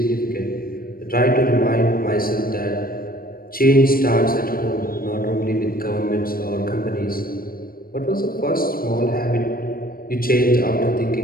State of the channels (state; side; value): late; right; 0.42 ms